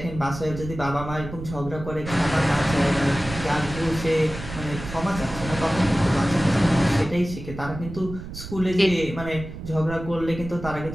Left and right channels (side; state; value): right; noise; rumble, 11 dB below the sound